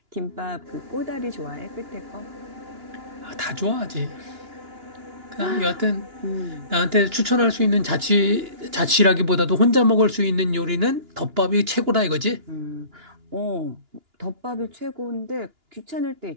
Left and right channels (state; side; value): late; left; 2.9 ms